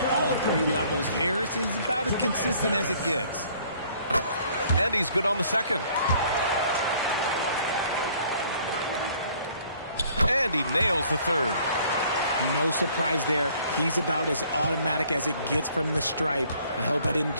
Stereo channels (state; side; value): inverted; both; correlation -0.59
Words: all 3 levels. Harris is about as consistent as it gets. And he's good on the second. And he nails the third. No surprise there. He's about as automatic as it gets from the stripe. I hope I didn't